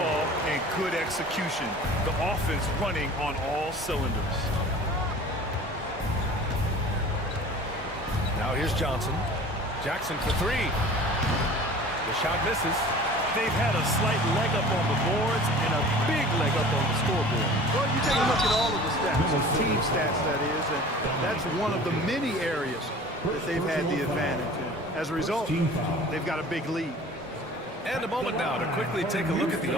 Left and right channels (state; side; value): normal; both; correlation 0.43